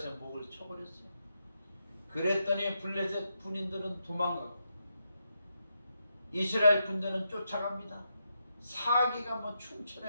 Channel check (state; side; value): inverted; both; correlation -0.84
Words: 목을 쳐버렸어요. 그랬더니 블레셋 군인들은 도망가고 이스라엘 군대는 쫓아갑니다. 사기가